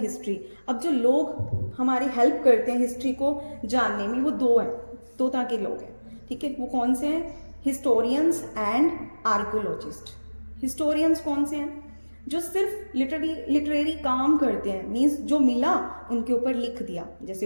अब जो लोग हमारी हेल्प करते हैं हिस्ट्री को जानने में, वो दो हैं, दो तरह के लोग हैं, ठीक है। वो कौन से हैं? Historians and archaeologist. हिस्टोरियंस कौन से हैं? जो सिर्फ लिटरेरी काम करते हैं, मीन्स जो मिला उनके ऊपर लिख दिया,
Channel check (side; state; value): both; inverted; correlation -1.00